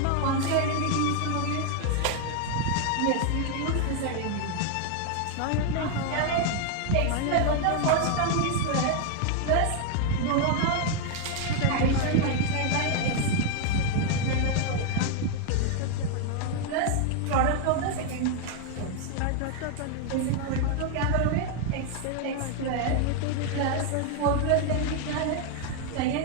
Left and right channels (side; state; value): both; different; correlation 0.00